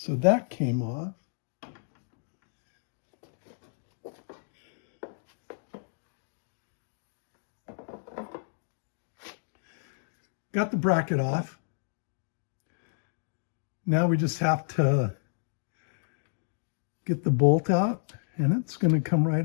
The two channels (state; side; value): silent; right; digital silence